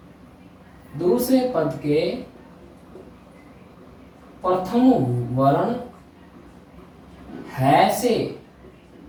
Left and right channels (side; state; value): both; identical; correlation 1.00